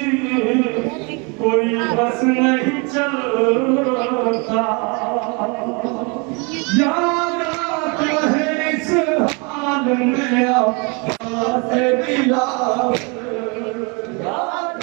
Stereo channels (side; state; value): left; quieter; 31.5 dB